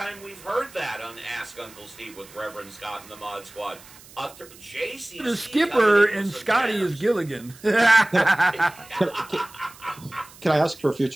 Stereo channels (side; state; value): right; noise; hiss, 21 dB below the sound